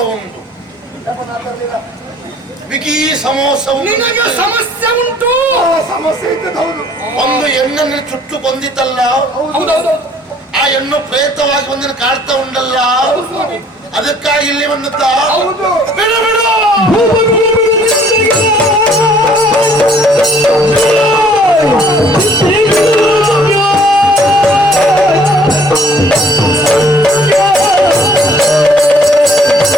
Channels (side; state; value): both; normal; correlation 0.58